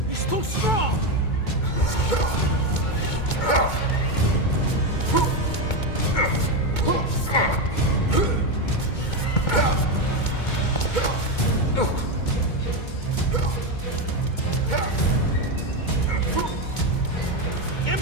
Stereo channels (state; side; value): late; right; 2.2 ms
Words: He's too strong.